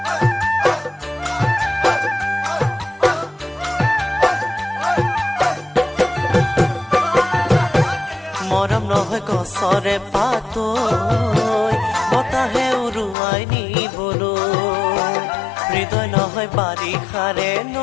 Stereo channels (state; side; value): drops out; right; at 13.2 s